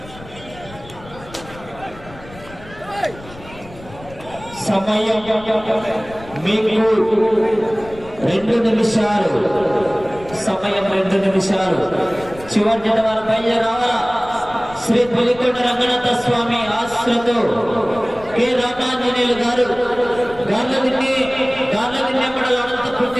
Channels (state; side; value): noise; left; rumble, 19 dB below the sound